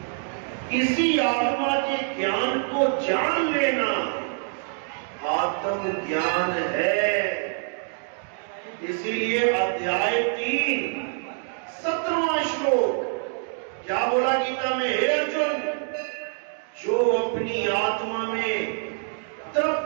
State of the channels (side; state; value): left; silent; 55 dB below the other